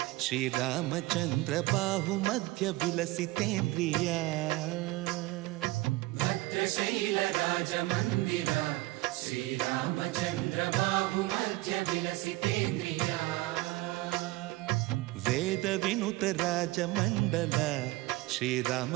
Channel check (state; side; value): quieter; left; 20.0 dB